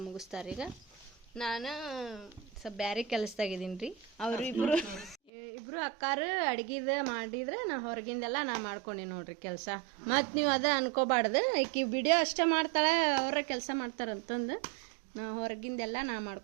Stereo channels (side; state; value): left; drops out; at 5.3 s